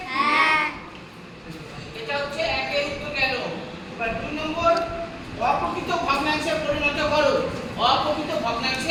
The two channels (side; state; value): both; identical; correlation 1.00